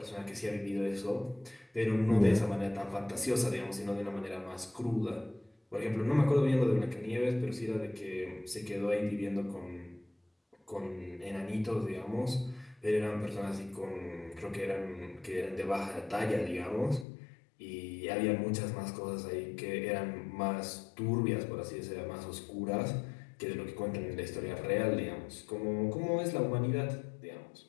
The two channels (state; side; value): drops out; right; at 17.1 s